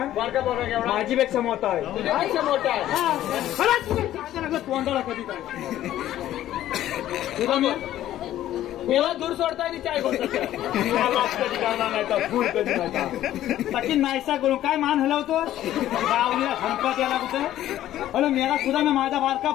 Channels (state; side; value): quieter; right; 13.0 dB